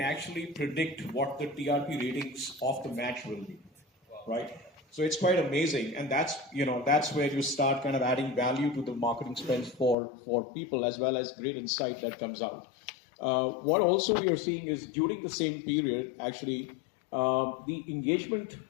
predict what the TRP ratings of the match will be, right? So it's quite amazing, and that's where you start kind of adding value to the marketing spends for people, as well as great insight that comes out. What also we are seeing is, during the same period, actually, the engagement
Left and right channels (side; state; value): right; drops out; at 10.0 s